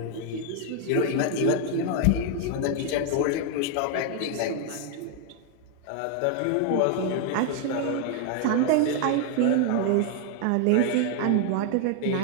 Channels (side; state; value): both; different; correlation 0.00